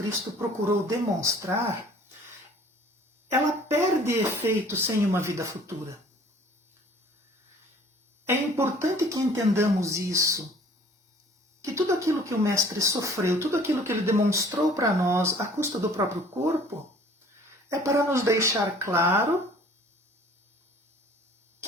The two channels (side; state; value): both; normal; correlation 0.52